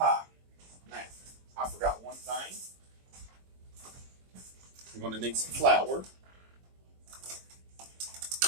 Now, I forgot one thing. I'm going to need some flour.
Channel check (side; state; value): left; late; 22 ms